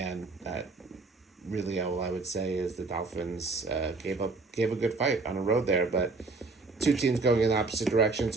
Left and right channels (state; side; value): quieter; left; 3.8 dB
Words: really all I would say is the Dolphins gave a good fight on the road there, but two teams going in opposite directions.